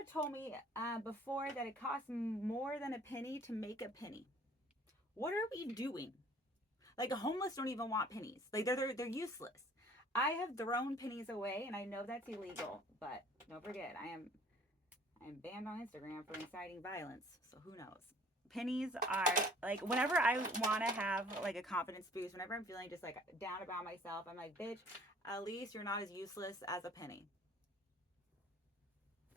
told me before that it costs more than a penny to make a penny. What are we doing? Like, a homeless don't even want pennies. Like, they're useless. I have thrown pennies away, and I know that's illegal, but don't forget, I am banned on Instagram for inciting violence. So who knows? Pennies are like, whenever I want to have like a confidence boost, whenever I'm feeling just like down about myself, I'm like, bitch, at least you're not as useless as a penny.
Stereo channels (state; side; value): normal; both; correlation 0.53